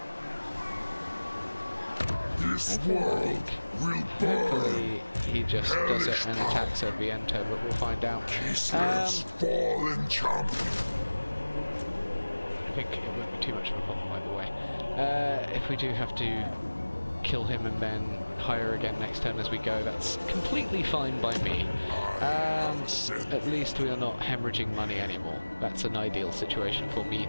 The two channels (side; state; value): both; inverted; correlation -1.00